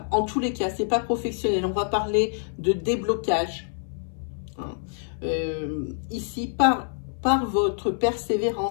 En tous les cas, ce n'est pas professionnel. On va parler de déblocage. Hein. Ici, par votre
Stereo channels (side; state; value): right; silent; 59 dB below the other